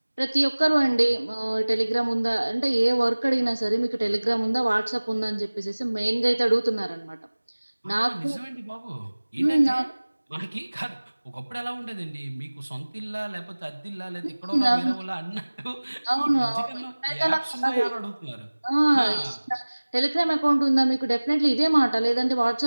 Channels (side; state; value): both; inverted; correlation -1.00